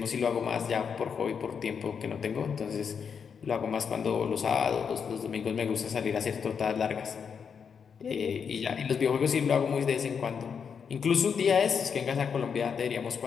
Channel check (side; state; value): right; quieter; 6.7 dB